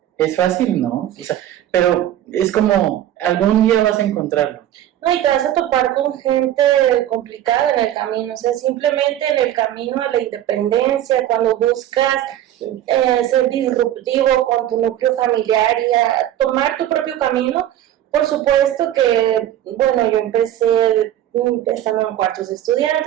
¿Es fácil? No. O sea, pero es como, algún día vas a encontrarlo. No, y te vas a topar con gente complicada en el camino, o sea, simplemente en el camino a la independencia, cuando buscas ser disruptivo con tu núcleo familiar y a tomar tu propio camino. Por supuesto que, bueno, yo empecé estando en cuartos de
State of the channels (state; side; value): quieter; left; 12.2 dB